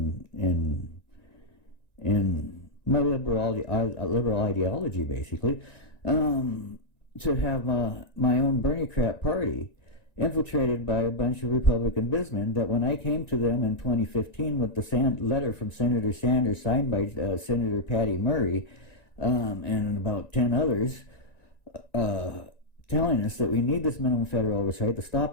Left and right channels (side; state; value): right; late; 1.9 ms